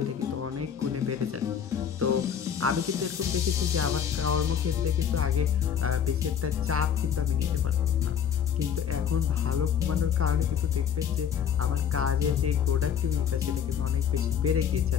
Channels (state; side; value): quieter; right; 8.2 dB